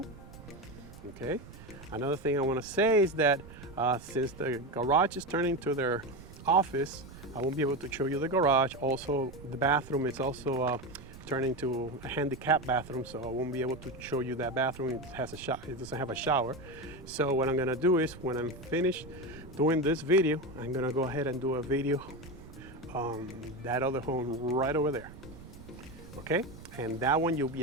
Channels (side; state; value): right; noise; rumble, 17 dB below the sound